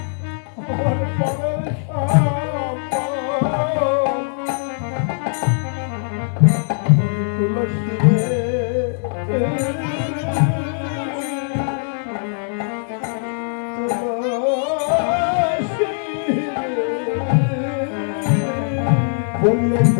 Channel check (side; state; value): right; silent; digital silence